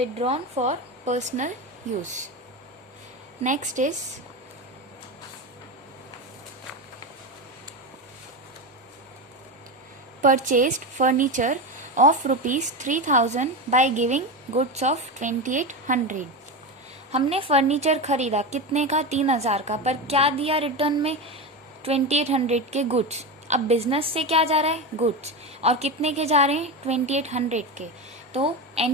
for personal use. Next is purchased furniture of rupees 3000 by giving goods of 2800. हमने फर्नीचर खरीदा कितने का, 3000 का, पर क्या दिया रिटर्न में, 2800 के गुड्स. अब बिजनेस से क्या जा रहा है, गुड्स, और कितने के जा रहे हैं, 2800 के. तो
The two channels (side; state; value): both; normal; correlation 0.19